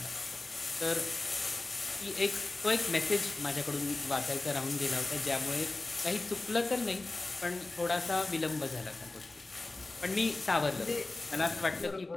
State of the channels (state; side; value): quieter; right; 3.1 dB